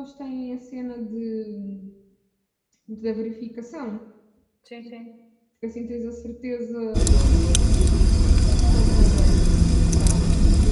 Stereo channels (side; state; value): both; identical; correlation 1.00